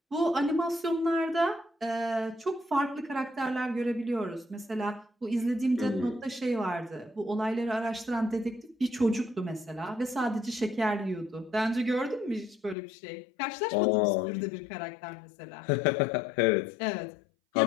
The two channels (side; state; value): right; drops out; at 12.8 s